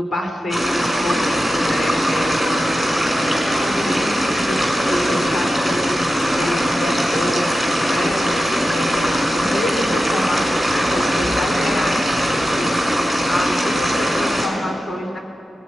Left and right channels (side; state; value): both; normal; correlation 0.92